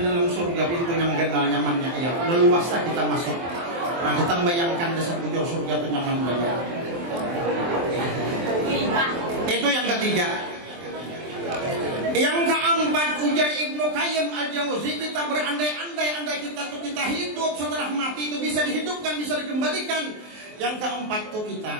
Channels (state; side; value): late; left; 23 ms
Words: dalam surga pintu yang genal nyamannya. Ya, leluasa kita masuk. Nah, kita membayangkan dasar bujur surga itu nyaman banget. Itu yang ketiga. Yang keempat, ujar Ibnu Qayyim Al-Jauzi, kita berandai-andai kita hidup setelah mati itu bisa dihidupkan, bisa dikembalikan. Yang keempat tuh kita